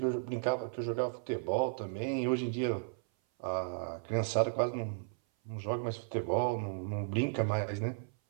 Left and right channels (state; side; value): silent; left; 55 dB below the other